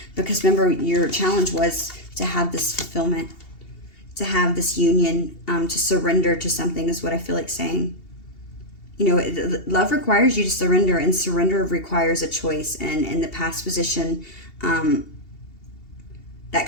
because remember, your challenge was to have this fulfillment, to have this union, to surrender to something, is what I feel like saying. Love requires you to surrender, and surrender requires a choice. And in the past position, that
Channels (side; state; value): right; late; 2.8 ms